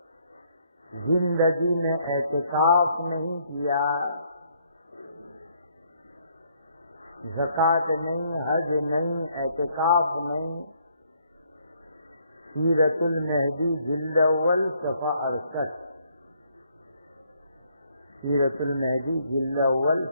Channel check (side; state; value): both; inverted; correlation -0.68